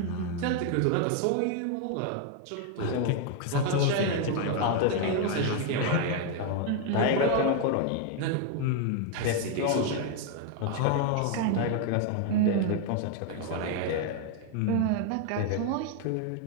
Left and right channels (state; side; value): different; both; correlation 0.01